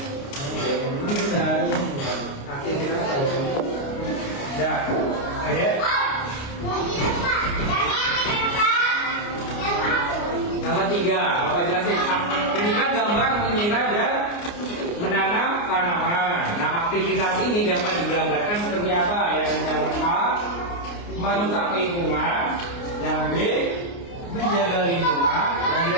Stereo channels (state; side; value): late; right; 29 ms